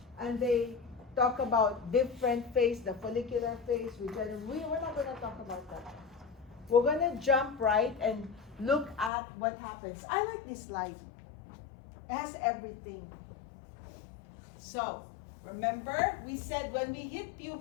And they talk about different phase, the follicular phase, we're not going to talk about that. We're going to jump right and look at what happens. I like this slide. It has everything. So, remember, we said when we hit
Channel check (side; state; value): right; drops out; at 9.1 s